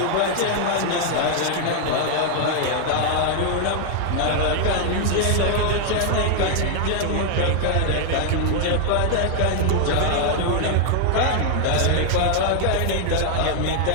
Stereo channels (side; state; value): both; different; correlation 0.00